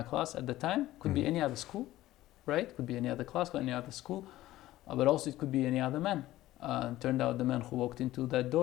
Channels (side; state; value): right; quieter; 15.7 dB